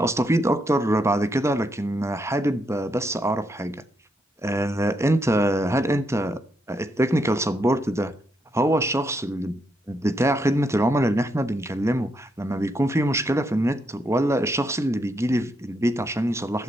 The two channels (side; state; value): both; normal; correlation 0.79